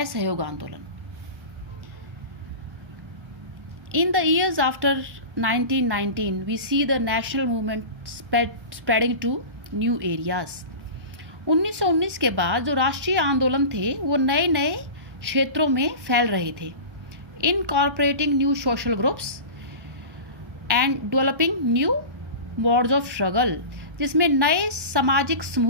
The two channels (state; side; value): late; left; 1.2 ms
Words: आंदोलन. In the years after 1919, we see the national movement spreading to new areas. 1919 के बाद जो राष्ट्रीय आंदोलन थे वो नए नए क्षेत्रों में फैल रहे थे. Incorporating new social groups and developing new modes of struggle, जिसमें नए सामाजिक